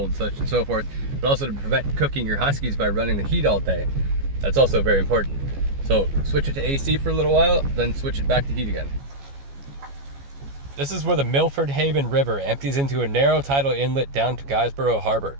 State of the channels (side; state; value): left; late; 14 ms